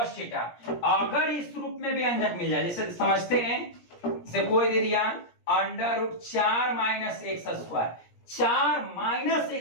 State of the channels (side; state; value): right; late; 17 ms